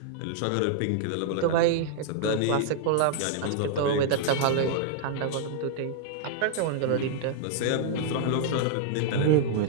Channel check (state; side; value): different; both; correlation 0.00